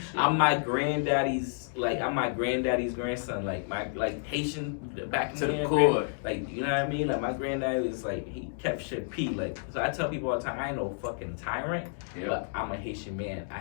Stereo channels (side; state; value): right; silent; digital silence